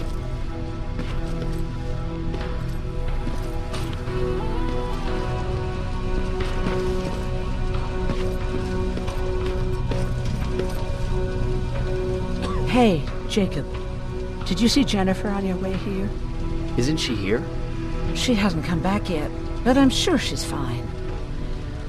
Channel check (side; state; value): both; identical; correlation 1.00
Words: Hey, Jacob. Did you see Jennifer on your way here? Isn't she here? She hasn't come back yet, but I'm sure she's fine.